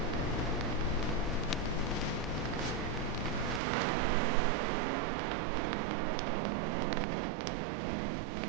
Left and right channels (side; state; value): left; drops out; at 3.6 s